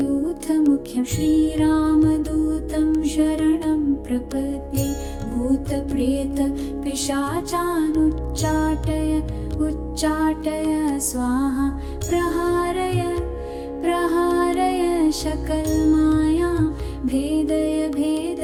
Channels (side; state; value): both; identical; correlation 1.00